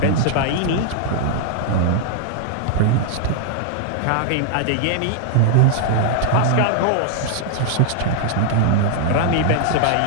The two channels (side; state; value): both; different; correlation -0.01